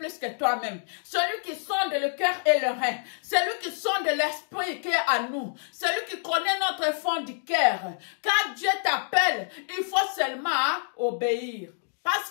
que toi-même. Celui qui sonde le cœur et le rein. Celui qui sonde l'esprit qui est à nous. Celui qui connaît notre fond du cœur. Quand Dieu t'appelle, il faut seulement obéir. Parce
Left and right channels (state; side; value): silent; right; digital silence